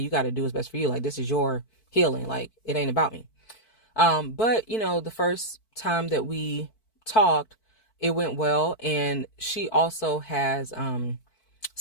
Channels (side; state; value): right; late; 4.5 ms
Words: got to do what's best for you. Like, this is your healing. Like, it ain't about me. But, the first time that we talked, it went well. And she also has,